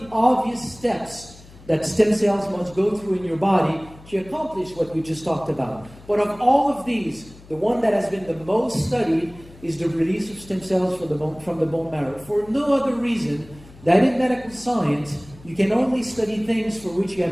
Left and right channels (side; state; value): left; noise; hum, 22 dB below the sound